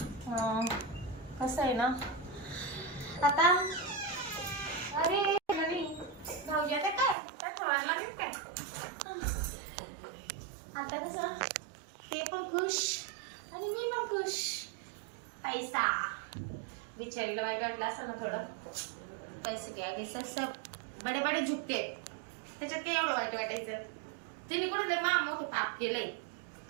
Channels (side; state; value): left; drops out; at 7.2 s